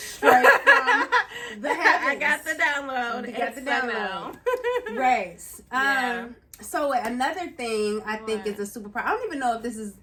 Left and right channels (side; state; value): both; identical; correlation 1.00